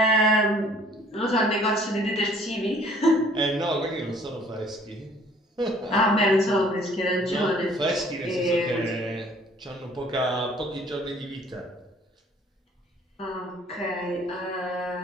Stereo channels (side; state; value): both; normal; correlation 0.56